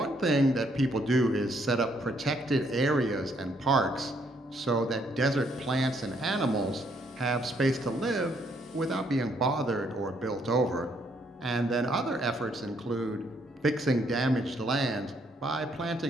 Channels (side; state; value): both; normal; correlation 0.70